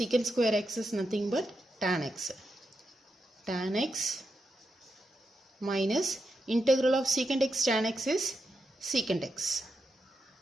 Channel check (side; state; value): both; normal; correlation 0.86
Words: square x is nothing but tan x. Tan x minus integral of secant x tan x is secant x.